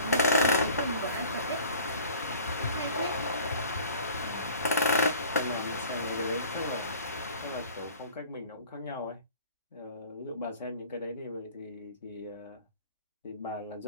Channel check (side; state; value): both; inverted; correlation -0.47